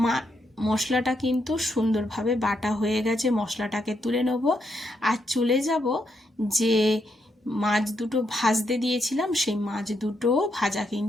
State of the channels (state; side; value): normal; both; correlation 0.79